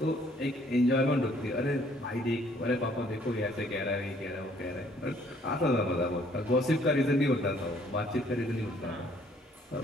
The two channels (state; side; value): normal; both; correlation 0.62